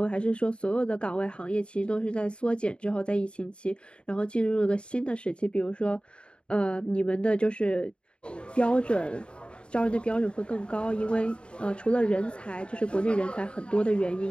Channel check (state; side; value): late; right; 0.055 ms